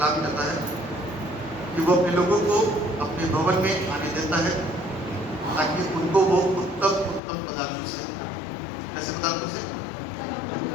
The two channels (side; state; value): right; drops out; at 7.2 s